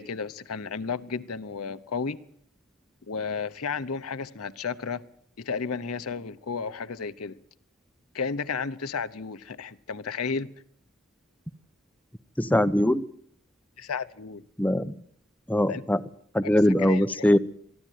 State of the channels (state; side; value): normal; both; correlation 0.70